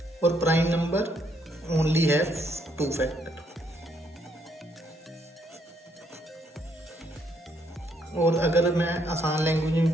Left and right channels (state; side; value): normal; both; correlation 0.72